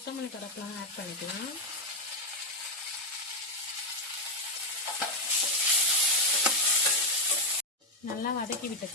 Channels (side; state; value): both; normal; correlation 0.04